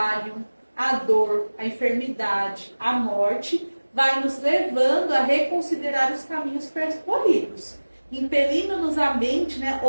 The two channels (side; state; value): both; inverted; correlation -1.00